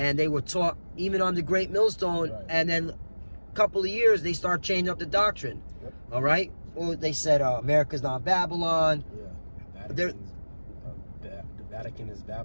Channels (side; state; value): both; inverted; correlation -1.00